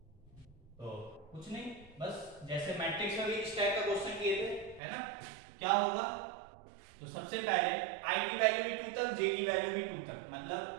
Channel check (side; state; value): left; drops out; at 4.8 s